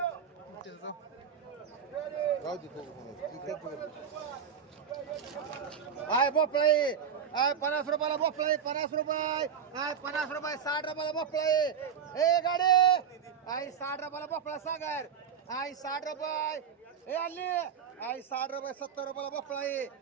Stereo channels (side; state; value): left; quieter; 7.6 dB